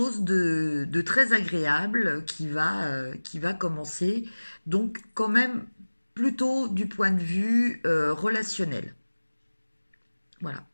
de très agréable qui va commencer. Donc quand même plutôt du point de vue relationnel. Voilà.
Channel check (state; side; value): inverted; both; correlation -1.00